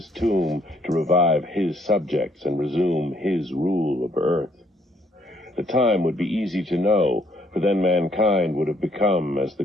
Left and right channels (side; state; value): both; normal; correlation 0.67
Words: tomb to revive his subjects and resume his rule of earth. The time would be easy to know, for then mankind would have become as the